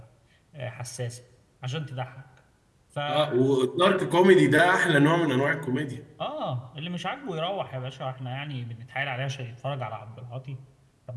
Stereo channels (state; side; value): identical; both; correlation 1.00